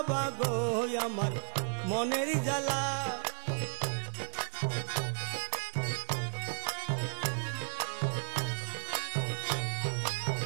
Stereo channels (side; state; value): left; silent; digital silence